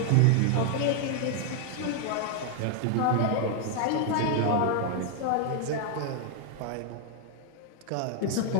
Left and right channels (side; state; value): both; different; correlation 0.00